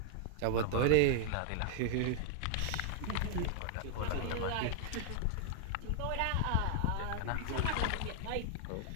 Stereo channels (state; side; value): different; both; correlation 0.00